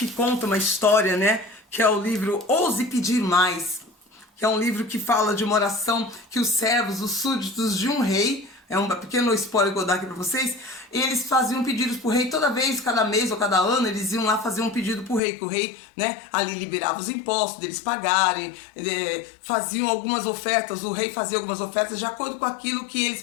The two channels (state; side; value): drops out; right; at 15.2 s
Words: conta uma história, né? Que é o livro Ouse Pedir Mais, que é um livro que fala de uma oração que os servos, os súditos de um rei, é um pequeno spoiler que eu vou dar aqui para vocês, eles faziam pedidos pro rei toda vez, cada mês ou cada ano, eles iam lá fazer um pedido pro rei, que o rei, né, ali liberava os impostos deles pagarem, faziam algumas ofertas, o rei fazia algumas ofertas de acordo com aquilo que